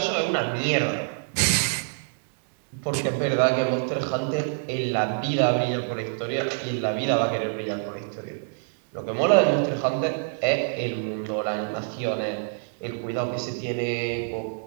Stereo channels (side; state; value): left; silent; 61 dB below the other